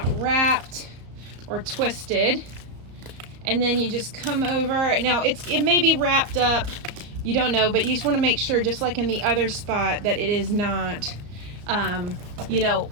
wrapped or twisted. And then you just come over. Now it may be wrapped up, you don't know, but you just want to make sure, just like in the other spot, that it is not, you know,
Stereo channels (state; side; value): late; left; 34 ms